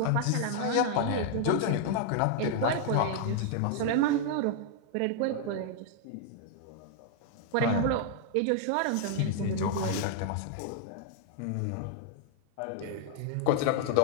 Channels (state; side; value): different; both; correlation 0.00